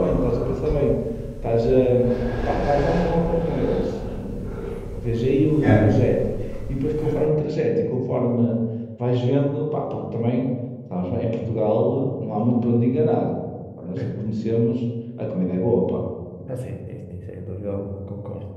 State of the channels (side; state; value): both; identical; correlation 1.00